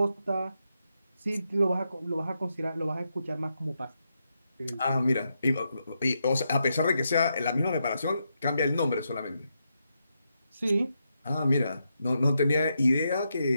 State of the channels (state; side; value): inverted; both; correlation -0.84